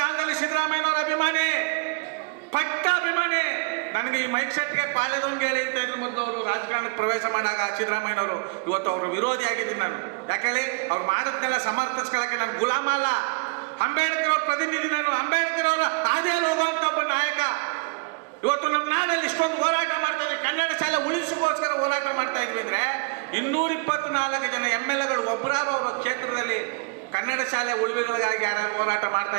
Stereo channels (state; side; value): quieter; left; 31.9 dB